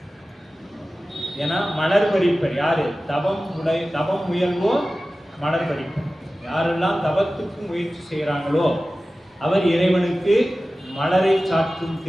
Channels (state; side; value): normal; both; correlation 0.96